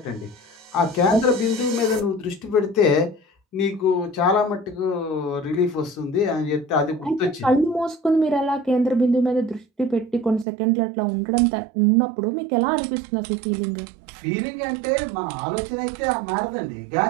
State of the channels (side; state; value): left; drops out; at 10.5 s